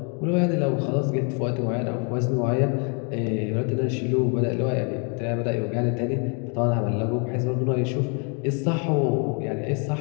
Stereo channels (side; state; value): right; quieter; 37.8 dB